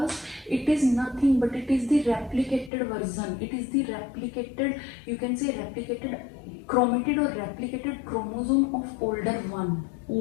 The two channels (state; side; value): drops out; right; at 2.7 s